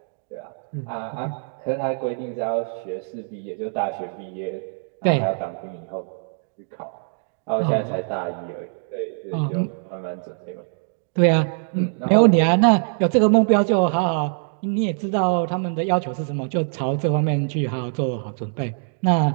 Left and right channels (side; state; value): left; silent; 63 dB below the other